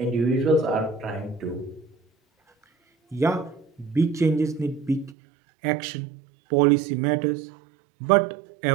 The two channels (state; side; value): drops out; left; at 5.2 s